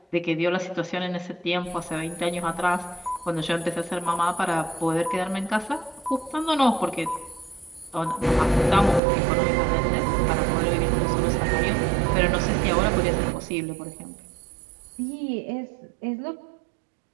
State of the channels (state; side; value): drops out; left; at 9.0 s